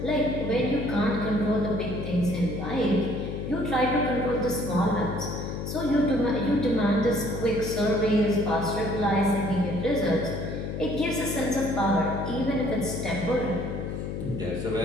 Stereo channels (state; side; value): noise; left; hum, 5 dB below the sound